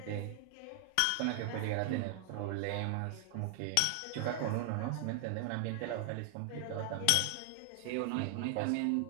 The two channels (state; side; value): different; both; correlation 0.00